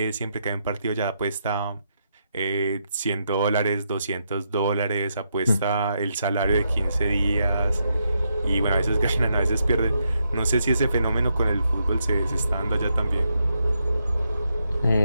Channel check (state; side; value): inverted; both; correlation -0.80